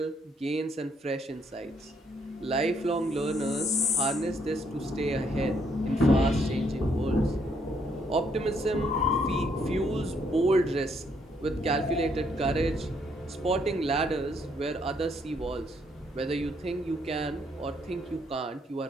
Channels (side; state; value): both; normal; correlation 0.71